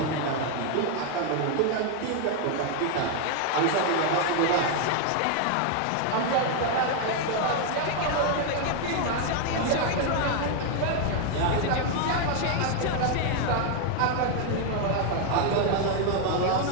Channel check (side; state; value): both; different; correlation 0.00